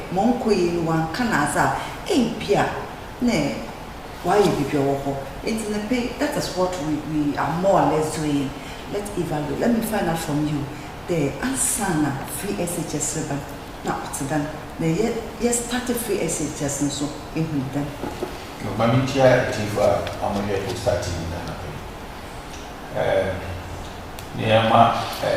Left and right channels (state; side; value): identical; both; correlation 1.00